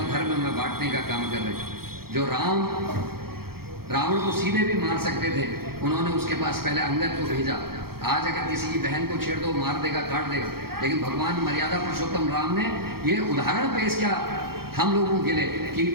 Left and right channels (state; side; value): late; left; 0.94 ms